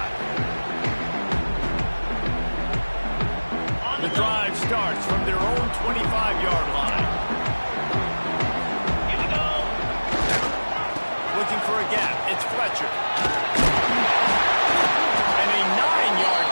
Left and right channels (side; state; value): both; inverted; correlation -1.00